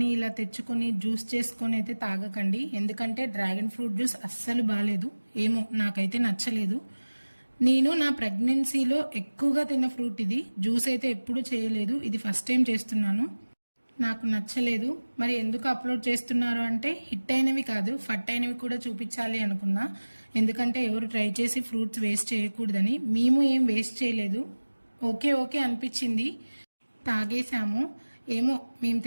ఇలా తెచ్చుకొని జ్యూస్ చేసుకొని అయితే తాగకండి. ఎందుకంటే డ్రాగన్ ఫ్రూట్ జ్యూస్ అస్సలు బాగాలేదు, ఏమో నాకైతే నచ్చలేదు. నేను నా ప్రెగ్నెన్సీలో ఎక్కువగా తిన్న ఫ్రూట్ ఇది. జ్యూస్ అయితే ఎప్పుడు చేయలేదు, ఇది ఫస్ట్ టైం చేస్తున్నాను. నాకు నచ్చలేదు. మరి ఎందుకు అప్లోడ్ చేస్తున్నారు అంటే హిట్ అయినవి కాదు, ఫట్ అయినవి కూడా చూపించాలి అనుకున్నా. ఎందుకంటే ఎవరు ట్రై చేసి ఫ్రూట్స్ వేస్ట్ చేయకూడదని. మేము ఏం వేస్ట్ చేయలేదు, ఓకే అనిపించింది, తాగేసాము. ఏమో మేము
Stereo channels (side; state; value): both; inverted; correlation -1.00